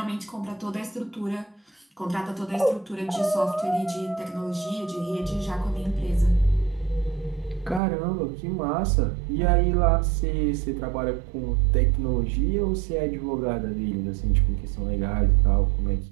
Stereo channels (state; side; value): drops out; left; at 7.8 s